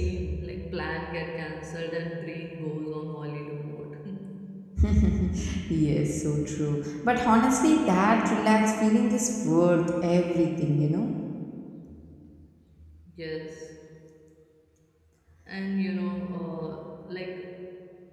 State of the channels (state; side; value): identical; both; correlation 1.00